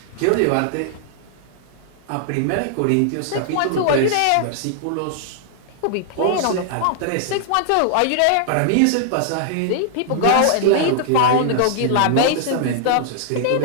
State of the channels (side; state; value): both; different; correlation -0.01